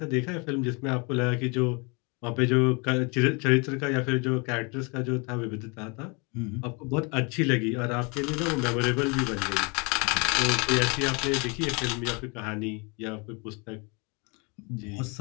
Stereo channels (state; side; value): quieter; right; 31.3 dB